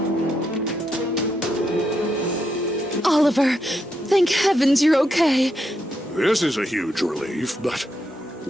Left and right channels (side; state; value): both; normal; correlation 0.81